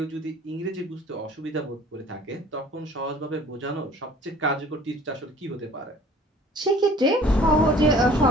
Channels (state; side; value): normal; both; correlation 0.50